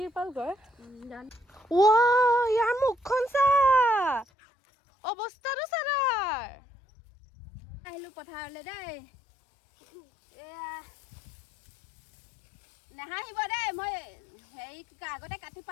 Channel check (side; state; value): right; drops out; at 4.2 s